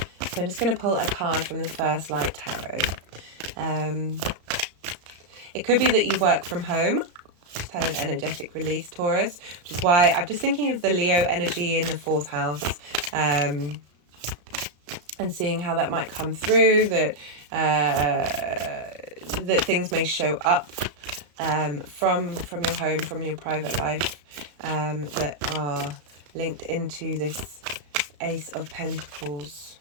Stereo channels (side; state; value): left; late; 34 ms